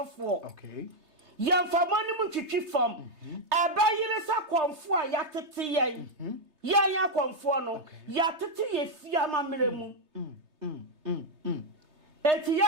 okay yan famani mu twitwi fam abayire sa konfo a yatete yen yaya konfo no yatete ye fia mamre mu eti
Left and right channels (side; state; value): left; late; 3.3 ms